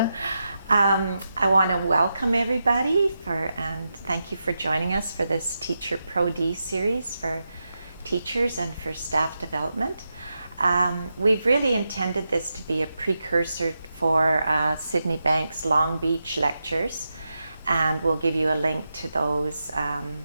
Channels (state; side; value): inverted; both; correlation -0.88